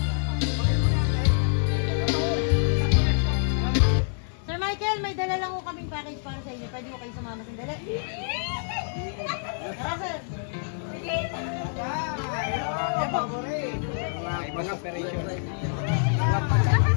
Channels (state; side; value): silent; right; digital silence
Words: Michael, may dala lang ko kaming package para sa inyo. Pwede mo kayo sumama sandali? Tara, sir. Ibang operation.